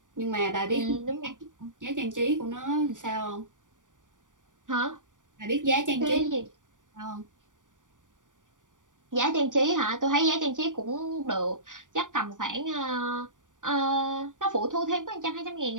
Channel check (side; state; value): left; late; 0.87 ms